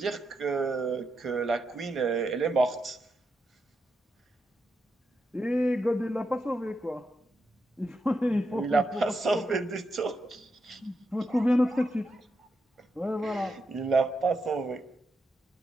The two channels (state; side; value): normal; both; correlation 0.84